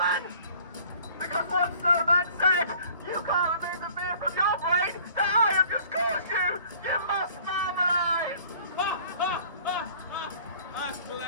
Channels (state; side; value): inverted; both; correlation -0.52